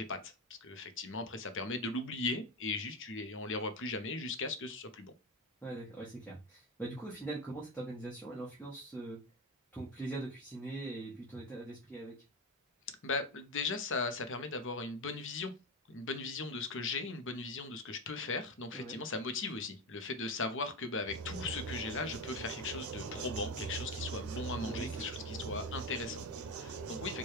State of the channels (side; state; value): both; normal; correlation 0.18